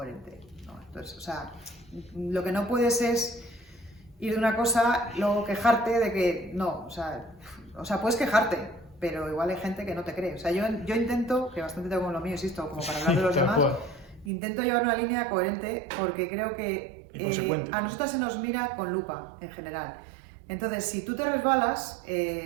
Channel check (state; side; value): drops out; left; at 14.3 s